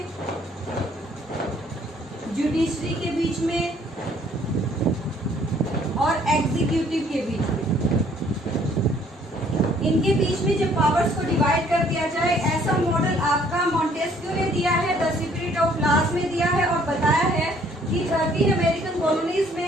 जुडिशरी के बीच में और एग्जीक्यूटिव के बीच में। इनके बीच में जो पावर्स को डिवाइड कर दिया जाए, ऐसा मॉडल आपका मोंटेस्क्यू ने दिया है, द स्पिरिट ऑफ लॉज में दिया है और बताया है कि 13 अमेरिकन कॉलोनीज में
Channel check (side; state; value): both; normal; correlation 0.61